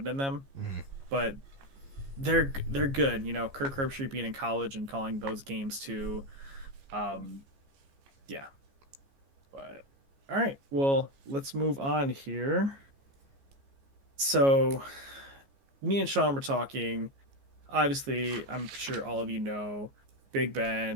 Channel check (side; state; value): left; late; 15 ms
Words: in them. Mhm. But they're good. Kirk Herbstreit being in college and calling those games too. Um, yeah. But all right, well, let's move on here. So, me and Sean were talking. Obviously, I'm sure all of you know Big